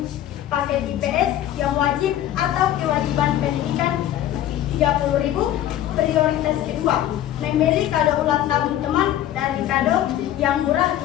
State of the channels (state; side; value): quieter; right; 12.3 dB